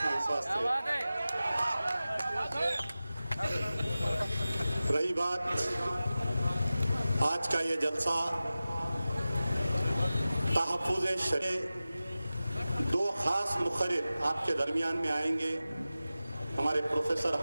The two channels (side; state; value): both; inverted; correlation -0.95